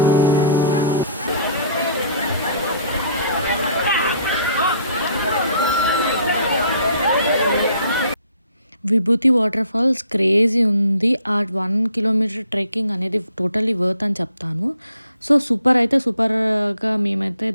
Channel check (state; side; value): inverted; both; correlation -0.59